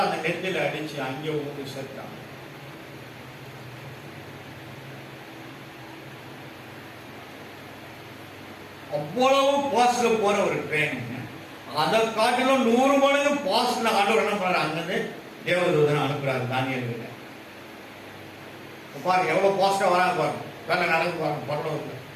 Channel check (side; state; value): both; identical; correlation 1.00